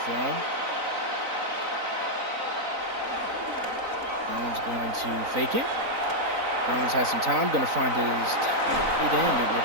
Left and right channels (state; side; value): late; left; 3.9 ms